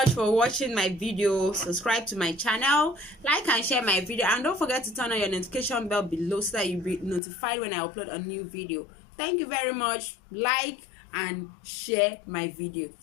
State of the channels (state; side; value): drops out; right; at 7.2 s